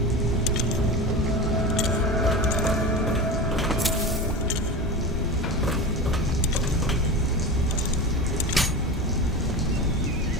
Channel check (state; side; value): normal; both; correlation 0.27